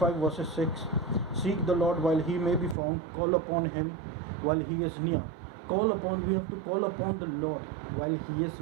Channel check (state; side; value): drops out; left; at 2.8 s